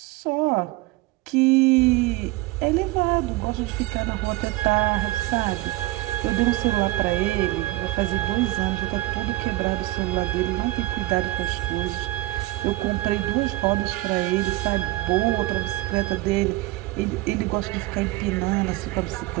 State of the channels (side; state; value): left; quieter; 18.5 dB